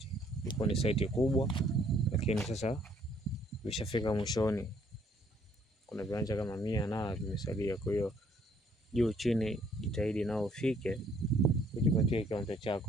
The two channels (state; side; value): normal; both; correlation 0.64